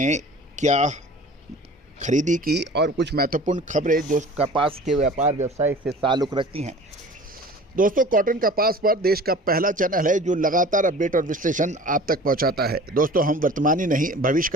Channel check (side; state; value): both; normal; correlation 0.43